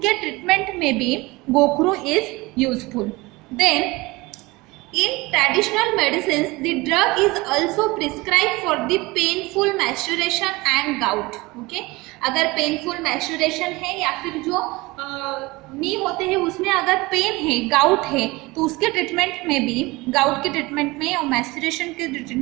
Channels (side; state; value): left; quieter; 22.4 dB